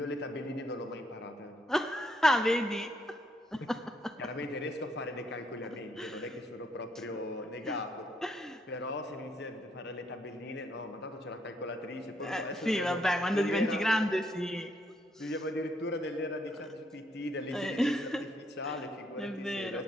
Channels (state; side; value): normal; both; correlation 0.73